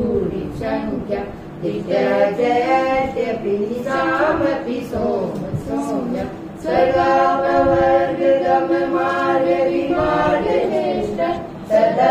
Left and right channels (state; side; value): identical; both; correlation 1.00